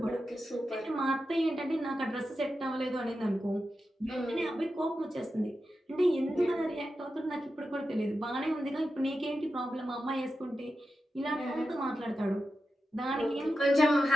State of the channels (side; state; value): both; normal; correlation 0.90